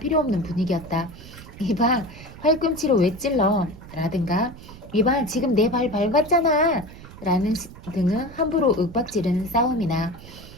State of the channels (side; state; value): right; noise; rumble, 17 dB below the sound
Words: 없는 분위기였다. 이봐, 팔꿈치로 왜 찔러? 라든가 이봐, 지금 내 발 밟았잖아! 라는 등은 함부로 윽박지르는 싸움이나